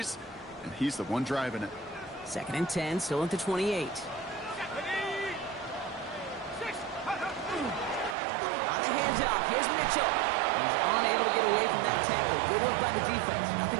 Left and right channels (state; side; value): drops out; left; at 8.2 s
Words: and he's the one driving it. 2nd and 10, still at the 28. On the handoff, here's Mitchell. He's unable to get away from that tackle. Good work by the defense.